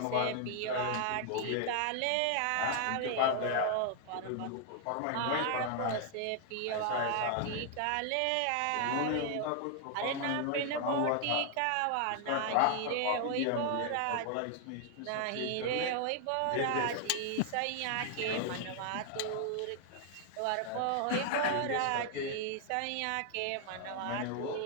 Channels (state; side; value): different; both; correlation 0.00